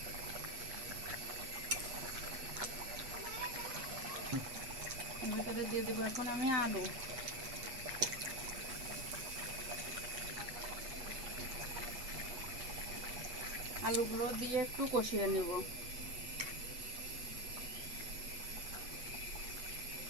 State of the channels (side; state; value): left; late; 8.3 ms